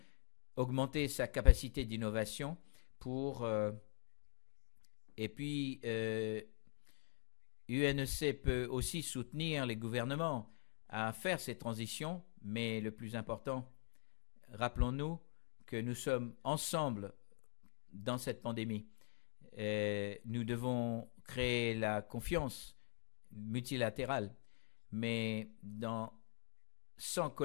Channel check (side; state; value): right; silent; digital silence